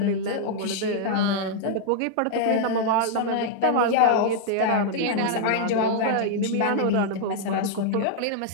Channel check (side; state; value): both; different; correlation -0.01